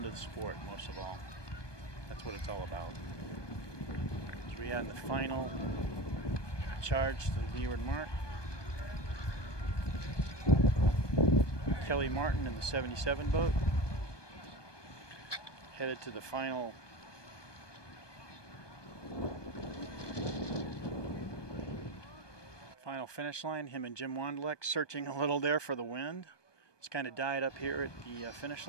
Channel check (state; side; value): late; right; 1.2 ms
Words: the sport most of all. That's what it's all about. As we had the final charge to the leeward mark. Kelly Martin in the 77 boat, headed to the final finish line. Him and Jim Wanderlek searching a little there for the wind. It's kind of died up here at the finish